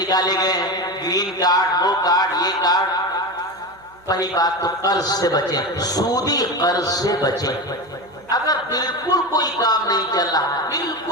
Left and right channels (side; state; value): right; noise; hum, 30 dB below the sound